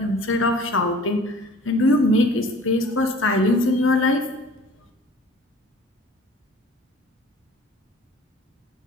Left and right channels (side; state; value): both; normal; correlation 0.48